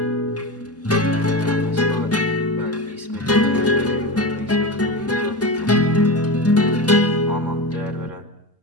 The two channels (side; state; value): both; normal; correlation 0.22